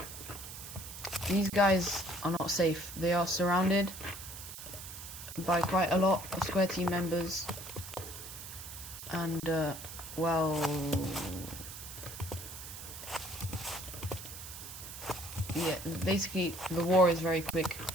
These guys are not safe. They are surrounded by quite a lot of Square team members. And well, yeah, basically the war is very quick.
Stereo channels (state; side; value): noise; right; hiss, 11 dB below the sound